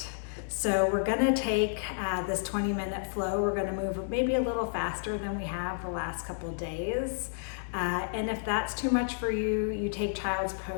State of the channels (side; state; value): right; silent; 57 dB below the other